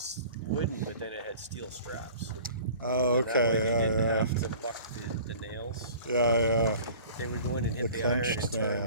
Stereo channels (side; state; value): both; inverted; correlation -0.45